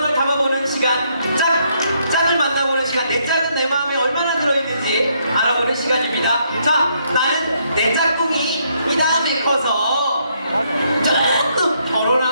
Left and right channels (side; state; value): both; inverted; correlation -0.72